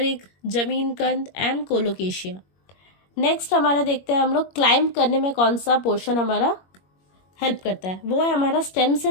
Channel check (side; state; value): right; late; 21 ms